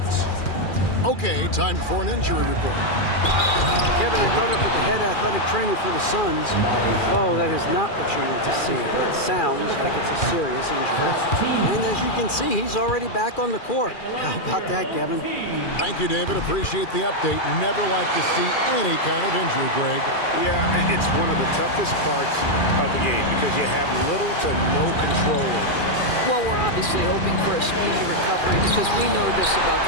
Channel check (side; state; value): right; late; 2.4 ms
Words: Okay, time for an injury report. Kevin, I caught up with the head athletic trainer for the Suns. Oh, that is not what you want to see. It sounds like it's a serious injury. And as you can see, he's already back on the court. How about that, Kevin? Thank you, David. Appreciate the update. Never like to see any kind of injury, Greg. Yeah, it's one of the toughest parts of the game because you have little to no control over it. Well, we're obviously hoping for a speedy recovery because we know this about